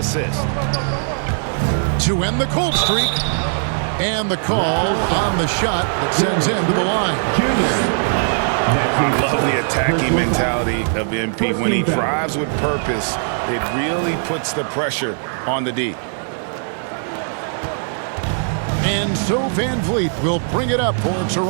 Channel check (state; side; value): silent; left; digital silence